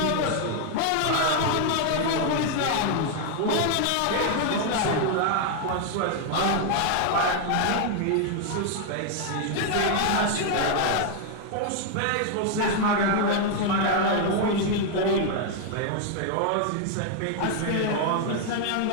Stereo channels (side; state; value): both; different; correlation 0.00